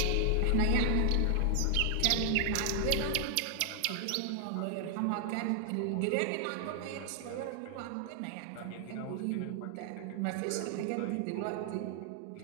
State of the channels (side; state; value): both; different; correlation 0.00